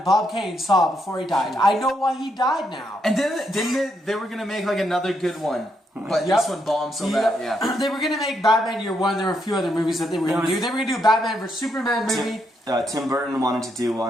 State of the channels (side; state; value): both; normal; correlation 0.78